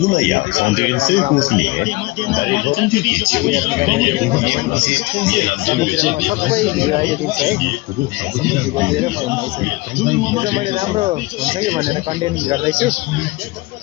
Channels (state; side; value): quieter; right; 21.9 dB